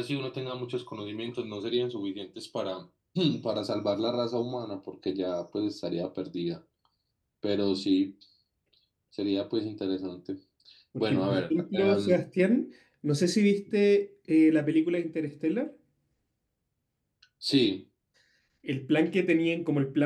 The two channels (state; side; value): identical; both; correlation 1.00